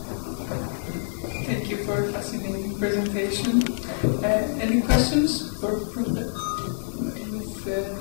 Thank you for a fascinating presentation. Any questions for Ms.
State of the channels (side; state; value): right; silent; digital silence